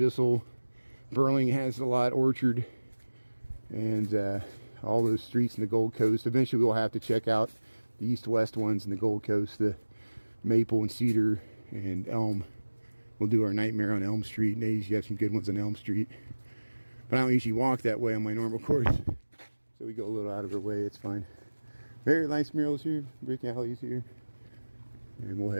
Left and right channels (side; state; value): both; inverted; correlation -1.00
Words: Burling has a lot. Orchard, and all those streets in the Gold Coast. Eventually we'll have to check out the east-west ones in the Gold Coast, the Maple and Cedar and Elm. We'll do our nightmare on Elm Street, and they usually have some good ones on Elm Street. But I don't usually walk that way on my normal course, so we go a little out of our way. It's fine. Very nice murals here, brick alleys here, and we'll